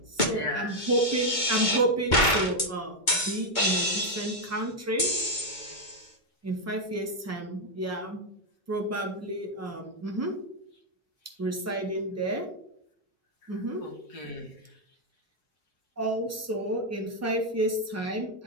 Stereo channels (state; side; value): late; right; 2.2 ms